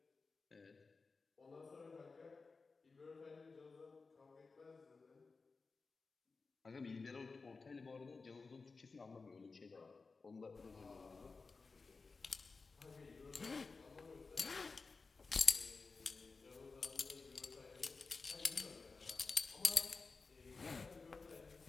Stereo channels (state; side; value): quieter; right; 4.3 dB